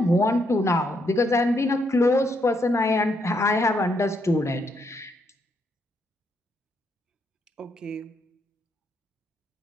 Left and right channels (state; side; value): normal; both; correlation 0.76